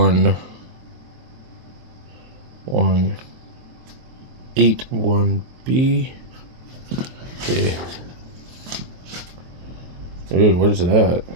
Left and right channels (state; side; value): late; left; 23 ms